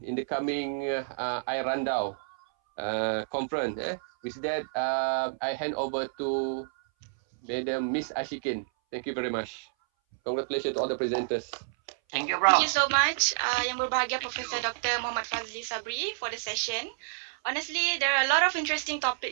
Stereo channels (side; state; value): left; silent; 58 dB below the other